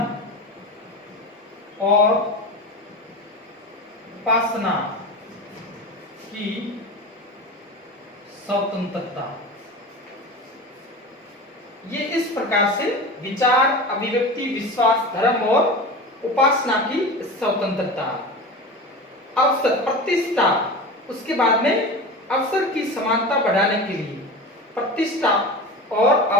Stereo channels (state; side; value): normal; both; correlation 0.30